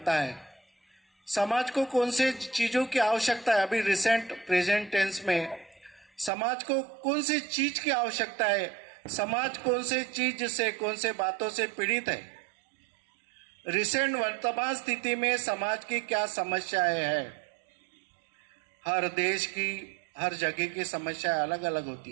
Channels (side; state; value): left; drops out; at 6.3 s